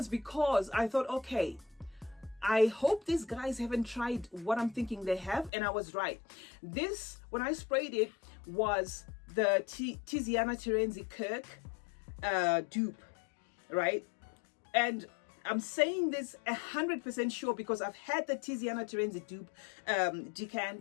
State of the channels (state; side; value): drops out; right; at 5.5 s